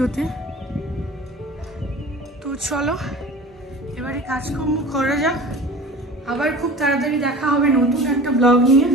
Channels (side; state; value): both; normal; correlation 0.39